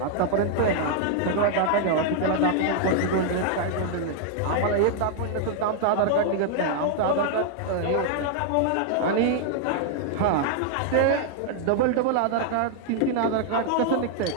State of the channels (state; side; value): different; both; correlation 0.00